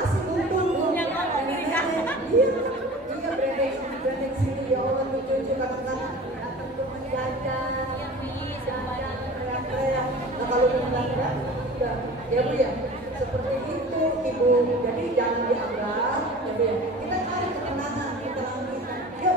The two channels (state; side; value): normal; both; correlation 0.39